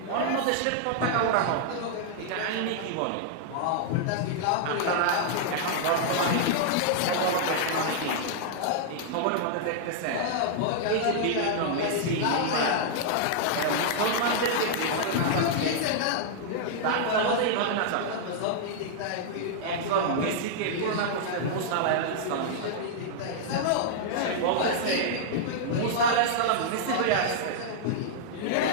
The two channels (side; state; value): both; different; correlation -0.01